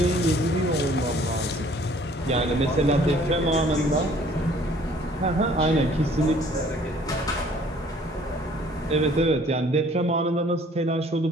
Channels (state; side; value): normal; both; correlation 0.56